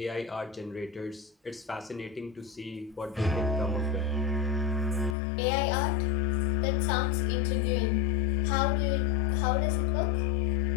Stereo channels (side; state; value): right; drops out; at 5.2 s